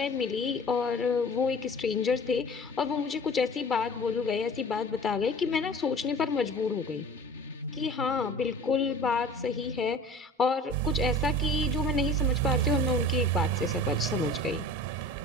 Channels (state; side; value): normal; both; correlation 0.42